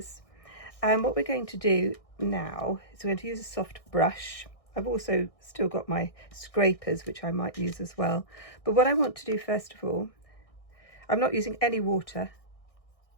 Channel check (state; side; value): late; right; 1.6 ms